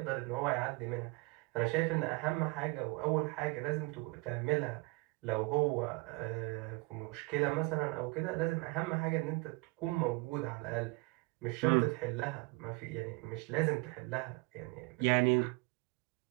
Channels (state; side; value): quieter; left; 27.0 dB